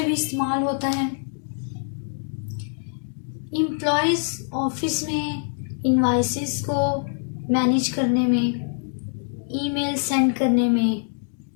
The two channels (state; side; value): silent; right; 62 dB below the other